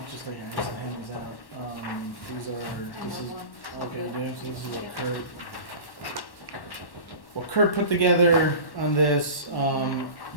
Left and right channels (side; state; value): right; late; 1.1 ms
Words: just like hand these out. This is, okay, James, so this is what Kurt put together on this.